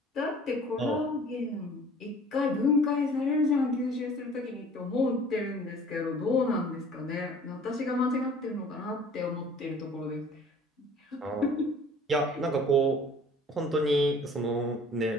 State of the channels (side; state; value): both; normal; correlation 0.49